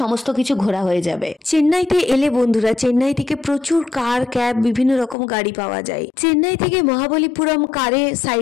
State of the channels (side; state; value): right; drops out; at 5.2 s